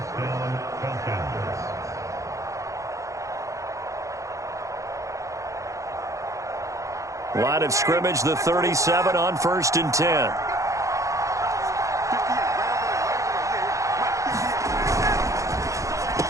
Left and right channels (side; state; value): left; late; 0.15 ms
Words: Line of scrimmage, the 37 on 1st and 10.